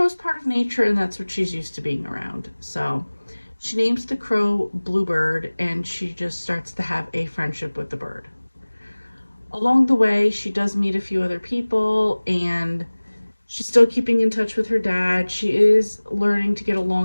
part of nature and that's what she's used to being around. So she names the crow Bluebird and she just starts to have a friendship with the bird. Along the way, she does meet a few other people, and she's still keeping in touch with her dad. She is learning to get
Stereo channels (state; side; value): inverted; both; correlation -1.00